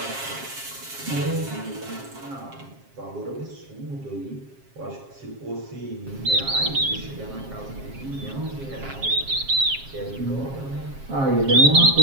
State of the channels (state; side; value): late; left; 7.4 ms